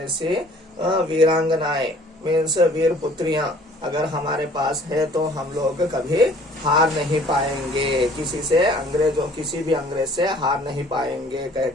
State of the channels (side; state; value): both; normal; correlation 0.54